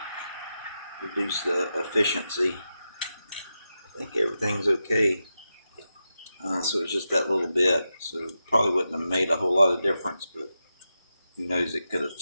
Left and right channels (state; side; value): inverted; both; correlation -0.89